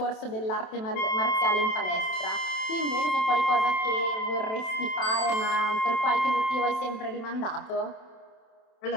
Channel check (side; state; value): right; late; 27 ms